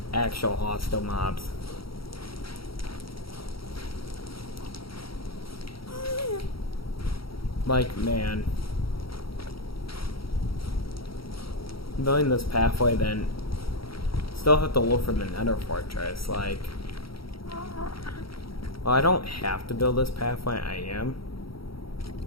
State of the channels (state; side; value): late; right; 0.75 ms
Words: actual hostile mobs. Like, man, building this pathway, then still have to look for the nether fortress. Like, well, I don't have to build this pathway, I am.